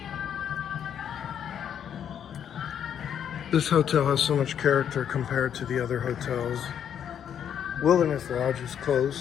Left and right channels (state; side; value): quieter; right; 8.9 dB